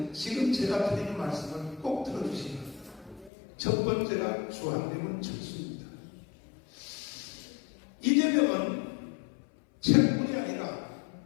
지금 제가 드리는 말씀을 꼭 들어주시기 바랍니다. 첫 번째가 주한미군 철수입니다. 이재명은 책뿐이 아니라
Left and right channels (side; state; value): right; drops out; at 3.3 s